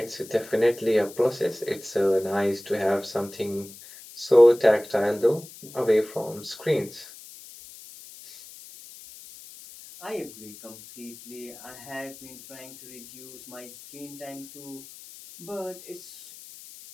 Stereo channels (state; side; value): noise; left; hiss, 17 dB below the sound